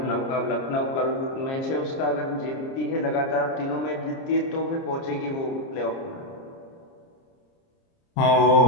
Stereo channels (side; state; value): right; late; 30 ms